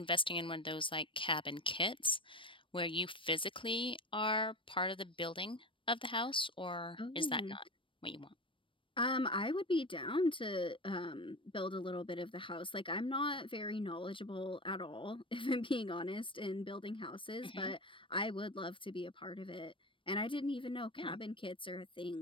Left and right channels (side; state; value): right; late; 0.25 ms